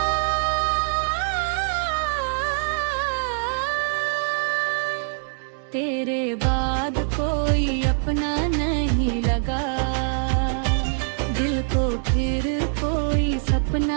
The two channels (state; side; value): silent; left; digital silence